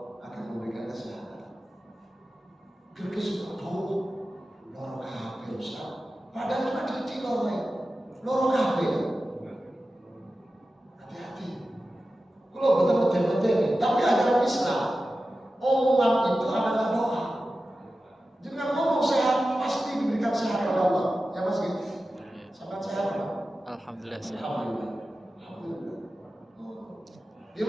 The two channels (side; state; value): both; normal; correlation 0.94